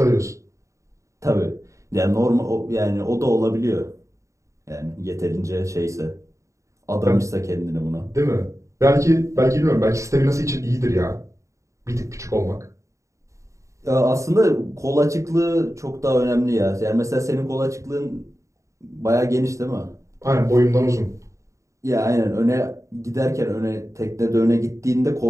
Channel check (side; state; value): left; late; 0.15 ms